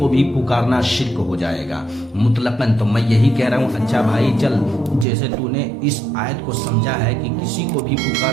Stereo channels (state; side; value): drops out; left; at 5.1 s